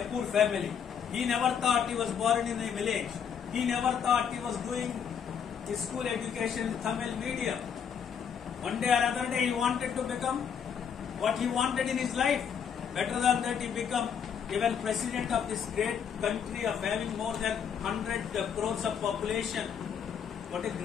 poor family. He never thought he was born in a village. He never thought he was doing his school education in Tamil medium. One day or other day he wanted to become what he wanted in his life. Better than that, he became even president of this great country of having more than 100 crores of population. What a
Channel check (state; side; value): quieter; right; 7.6 dB